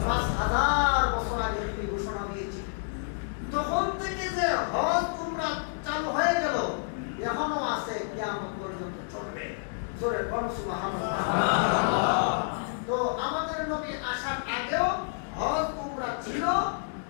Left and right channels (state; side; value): silent; right; digital silence